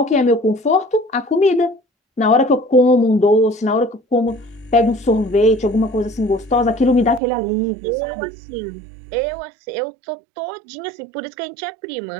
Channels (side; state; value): left; drops out; at 7.2 s